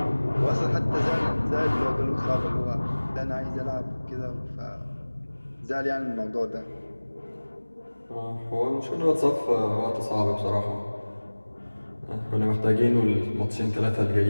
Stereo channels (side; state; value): both; inverted; correlation -1.00